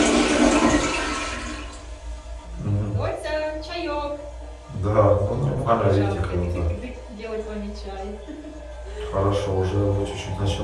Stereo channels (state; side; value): identical; both; correlation 1.00